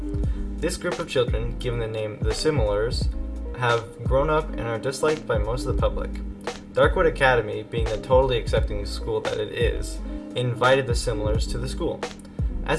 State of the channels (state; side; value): identical; both; correlation 1.00